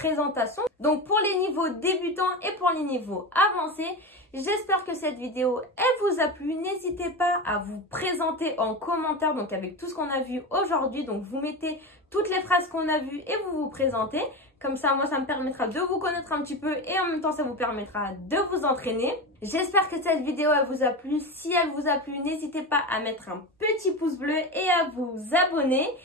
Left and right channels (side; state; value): both; normal; correlation 0.22